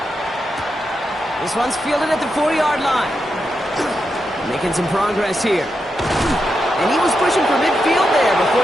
This one's fielded at the 4-yard line. Making some progress here. And he was pushing for midfield there before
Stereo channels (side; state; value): both; normal; correlation 0.86